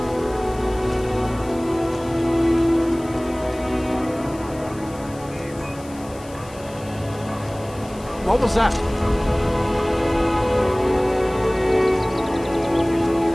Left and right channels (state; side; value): noise; left; hiss, 21 dB below the sound